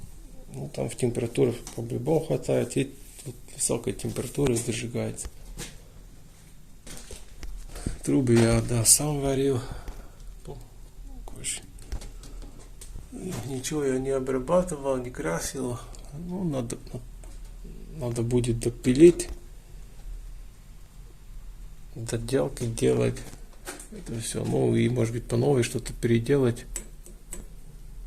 Ну, там в температуре по-любому хватает, и тут высокой температуры дожигается. Трубы я, да, сам варил. Ничего я не обрабатывал, не красил. Ну, надо будет допилить, доделки делать. Это все. Ну, и может быть по новой что-то переделать.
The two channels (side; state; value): both; identical; correlation 1.00